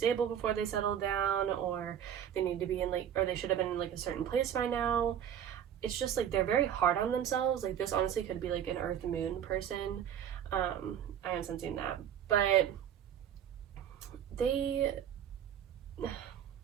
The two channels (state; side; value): quieter; left; 9.4 dB